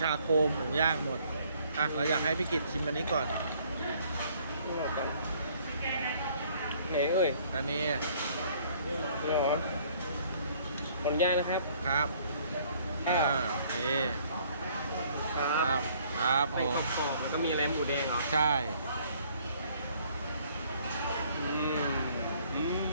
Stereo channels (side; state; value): both; inverted; correlation -0.60